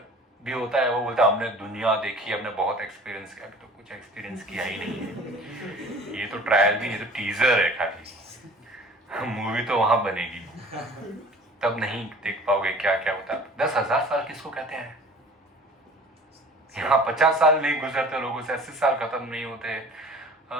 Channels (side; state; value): both; normal; correlation 0.46